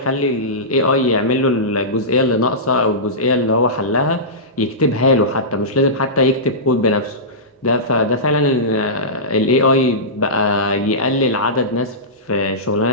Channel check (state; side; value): normal; both; correlation -0.17